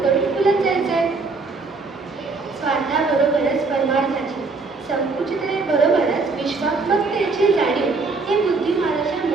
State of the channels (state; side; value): quieter; left; 4.0 dB